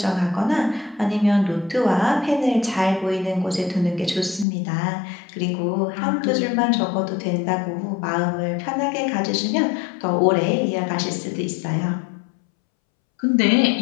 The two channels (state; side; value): drops out; right; at 4.5 s